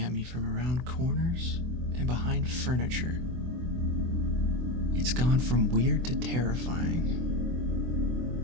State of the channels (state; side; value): late; left; 24 ms